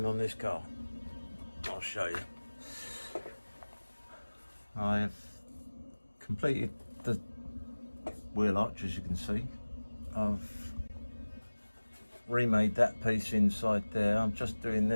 on this car? I'll show you. I have completed the wheel arch, as you can see. I've remade that piece inside there. I'm just doing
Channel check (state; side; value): inverted; both; correlation -1.00